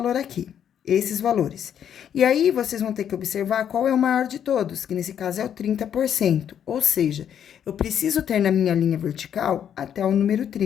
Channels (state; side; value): quieter; right; 9.1 dB